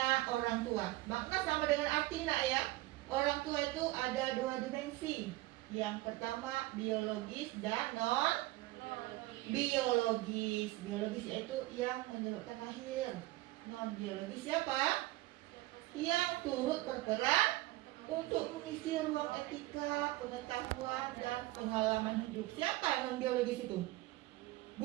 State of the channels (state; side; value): quieter; left; 18.7 dB